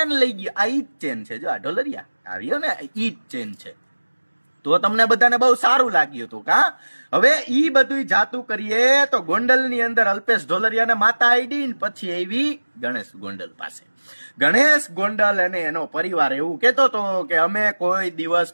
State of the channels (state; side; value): inverted; both; correlation -1.00